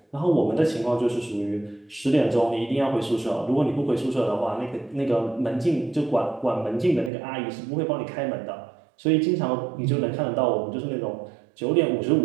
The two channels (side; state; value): left; drops out; at 7.1 s